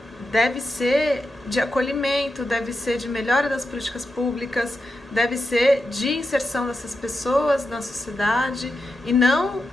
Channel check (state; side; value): normal; both; correlation 0.88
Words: deve ser de acolhimento, deve ser de melhora das políticas públicas, deve ser de inserção dessas pessoas na sociedade e não